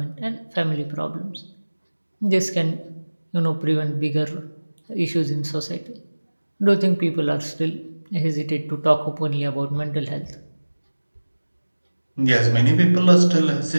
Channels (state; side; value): inverted; both; correlation -1.00